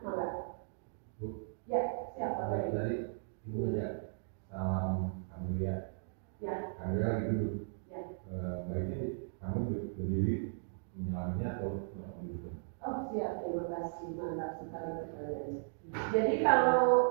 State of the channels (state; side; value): silent; left; digital silence